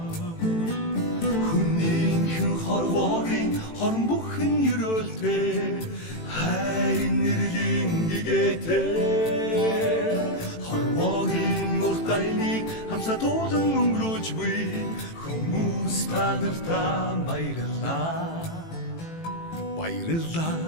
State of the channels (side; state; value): right; late; 18 ms